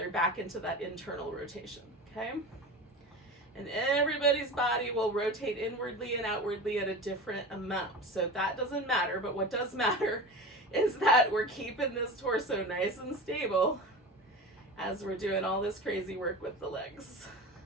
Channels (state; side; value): normal; both; correlation 0.30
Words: back into that internal rotation. Okay? And everybody's body will rotate inwardly and outwardly at a different amount. So that doesn't matter, but what does matter is that we're keeping this torso nice and stable as we're doing all this crazy work with the legs.